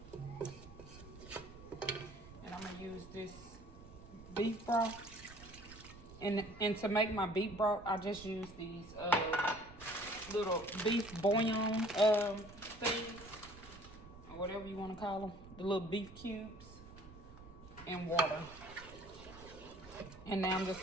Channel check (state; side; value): noise; right; rumble, 18 dB below the sound